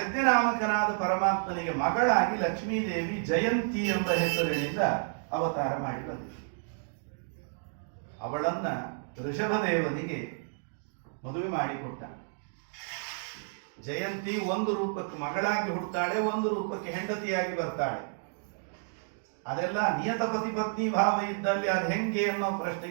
ಪರಮಾತ್ಮನಿಗೆ ಮಗಳಾಗಿ ಲಕ್ಷ್ಮೀದೇವಿ ಜಯಂತಿ ಎಂಬ ಹೆಸರಿನಿಂದ ಅವತಾರ ಮಾಡಿ ಬಂದಿದೆ. ಅವಳನ್ನ ಋಷಭದೇವನಿಗೆ ಮದುವೆ ಮಾಡಿಕೊಟ್ಟ. ಜಯಂತಿ ಒಂದು ರೂಪಕ್ಕೆ ಮಗಳಾಗಿ ಹುಡ್ತಾಳೆ, ಒಂದು ರೂಪಕ್ಕೆ ಹೆಂಡತಿಯಾಗಿ ಬರ್ತಾಳೆ. ಅದೆಲ್ಲ ನಿಯತ ಪತಿ ಪತ್ನಿ ಭಾವ ಇದ್ದಲ್ಲಿ ಅದು ಹೆಂಗೆ ಅನ್ನೋ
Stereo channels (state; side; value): silent; left; digital silence